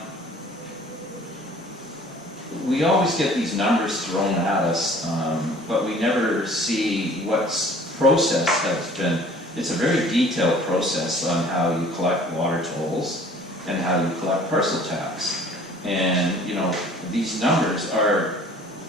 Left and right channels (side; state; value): both; normal; correlation 0.51